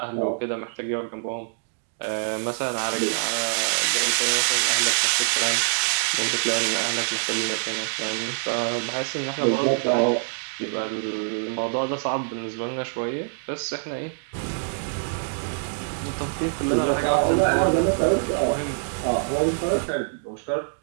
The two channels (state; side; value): silent; left; digital silence